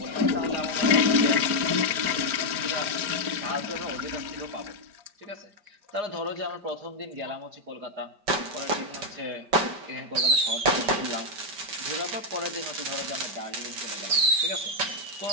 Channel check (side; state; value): left; late; 5.0 ms